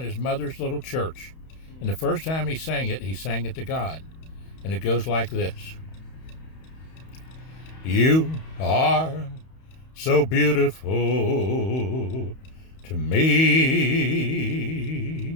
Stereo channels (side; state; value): right; late; 31 ms